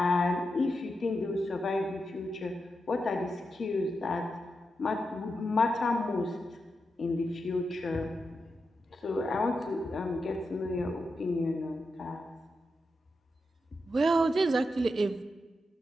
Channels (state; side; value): normal; both; correlation 0.87